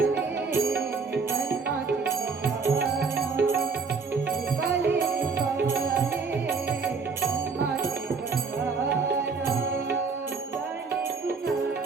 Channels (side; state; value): left; quieter; 4.8 dB